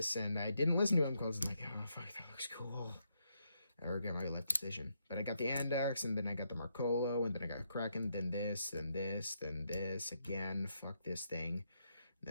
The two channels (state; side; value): inverted; both; correlation -0.78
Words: And I didn't listen to him because I'm like, oh, fuck, that looks cool. I regret my life decision. But I got the Andax, and then I got the Marcolo, and then I got Kraken, then this, then this, then this. Again, fuck this thing.